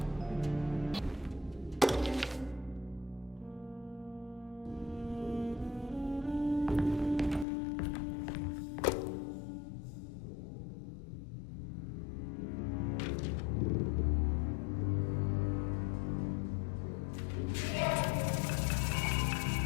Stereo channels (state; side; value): drops out; right; at 7.5 s